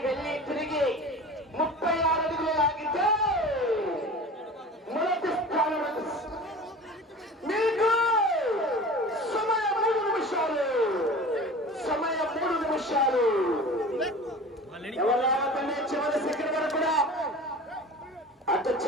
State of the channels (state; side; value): normal; both; correlation 0.38